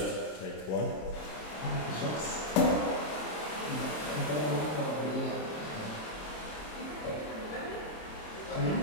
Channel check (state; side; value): late; right; 27 ms